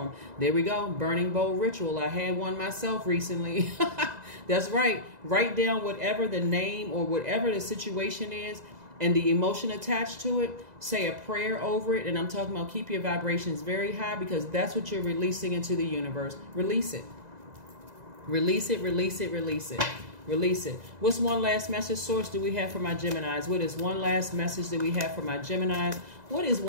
There we go. Burning bowl ritual. I had one myself recently. That's right. Write down whatever the name or whatever the situation is, and the emotion attached to it, say a prayer over it. And I'm talking about keep your vibrations very high, because that's what you're releasing into the universe. Release it. Release it, release it, release it. Release it. What's one last message, Source, do we have for my Geminis? What is one last message that we have for my Geminis? What is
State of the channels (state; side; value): late; left; 2.0 ms